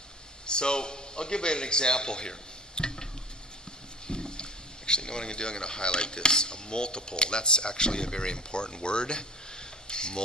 so I'll give you an example here. Actually, you know what I'm going to do? I'm going to highlight this. A multiple. That's actually a very important word.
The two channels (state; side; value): normal; both; correlation 0.41